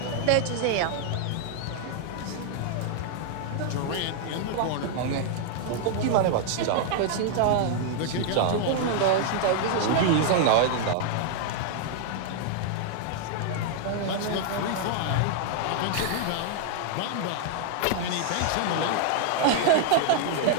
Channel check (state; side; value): different; both; correlation 0.00